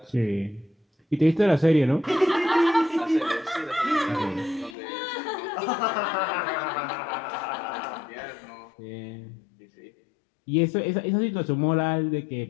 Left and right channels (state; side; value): drops out; right; at 4.8 s